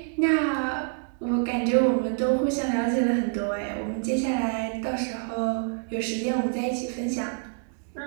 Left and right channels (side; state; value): left; silent; 55 dB below the other